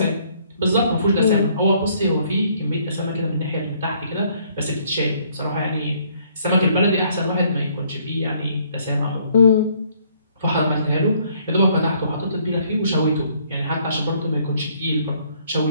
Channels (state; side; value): inverted; both; correlation -0.64